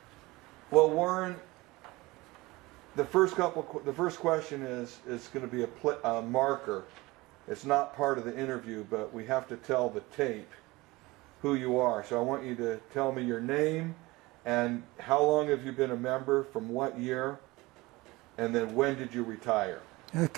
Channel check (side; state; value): left; quieter; 21.5 dB